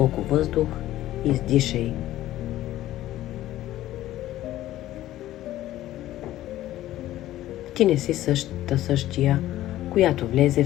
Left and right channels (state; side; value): quieter; right; 14.4 dB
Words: въздух и издишай. Ти не си същия, която влезе